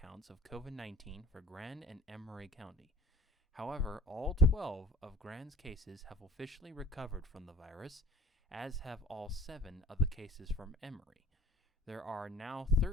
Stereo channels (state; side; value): normal; both; correlation 0.53